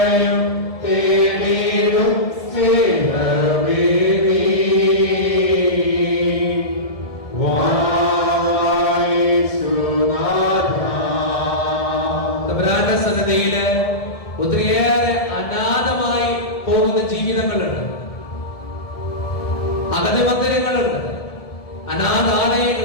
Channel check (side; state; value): right; late; 1.7 ms